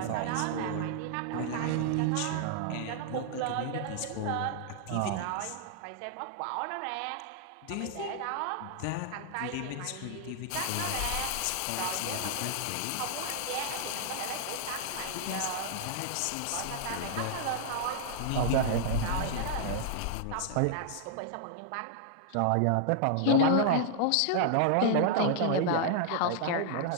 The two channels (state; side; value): different; both; correlation -0.01